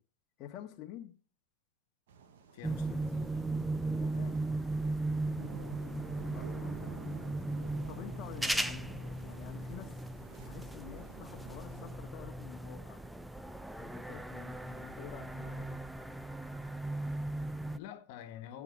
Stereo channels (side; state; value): both; normal; correlation 0.86